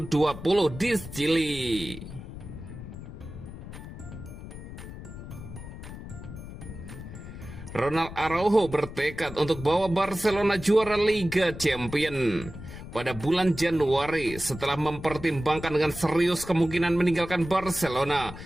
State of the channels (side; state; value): left; noise; rumble, 12 dB below the sound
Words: di Chili. Ronald Araujo bertekad untuk bawa Barcelona juara Liga Champions. Pada bulan Januari, setelah mempertimbangkan dengan serius kemungkinan meninggalkan Barcelona,